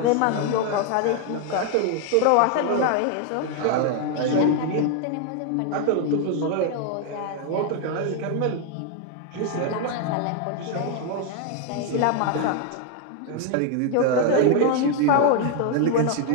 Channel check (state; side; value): different; both; correlation 0.01